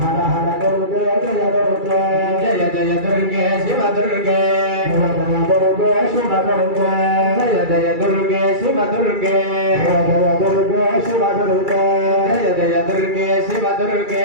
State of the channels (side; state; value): left; late; 2.3 ms